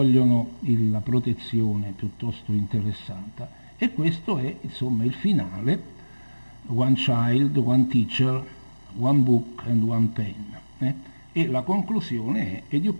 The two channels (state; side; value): inverted; both; correlation -1.00